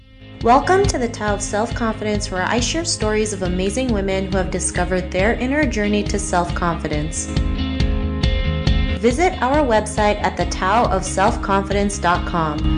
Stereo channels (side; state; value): both; identical; correlation 1.00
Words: Welcome to the Tao of Self-Confidence, where I share stories of amazing women who have discovered their inner journey to self-confidence. Visit our website at